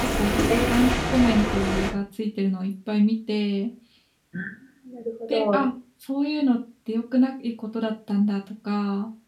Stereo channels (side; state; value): both; identical; correlation 1.00